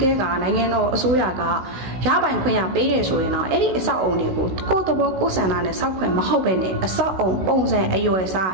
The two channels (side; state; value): left; late; 16 ms